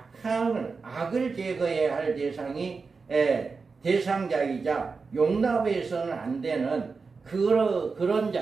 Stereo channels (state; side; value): quieter; left; 4.6 dB